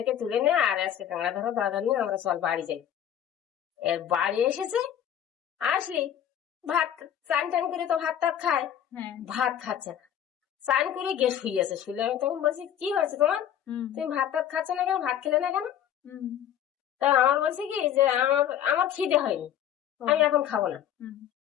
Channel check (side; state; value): right; quieter; 10.2 dB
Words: তুলে নে, আর আজকে কাঁকড়া ধরো দরকার নিয়ে আমরা চল বাড়ি যাই। এর বাড়ি এসেছে, আসলি ভাত চান টান করে তো ভাত টাত খায়, ভাত খাচ্ছে না, চান করে গিয়ে শুয়েছে। শুলে আমি তখন বলছি কি হয়েছে তোমার, তুমি ভাত টাত খাচ্ছ না কেন, ভাত খেলে না কেন? তা আমার বলছে কি যে আমার খিদে হয়নি, আমি এখন খাবো না।